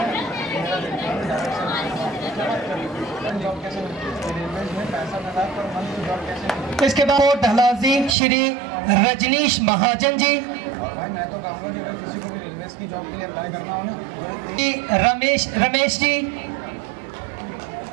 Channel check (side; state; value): left; drops out; at 8.2 s